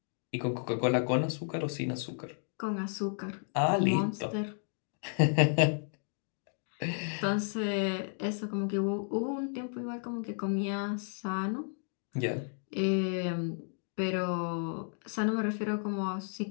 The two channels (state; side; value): silent; right; 56 dB below the other